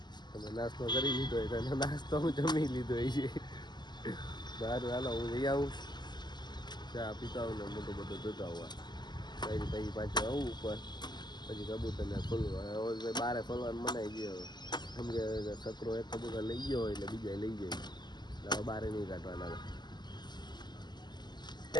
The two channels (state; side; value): late; right; 0.21 ms